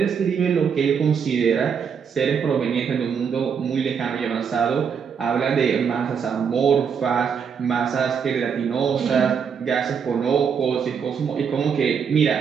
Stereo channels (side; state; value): left; quieter; 6.8 dB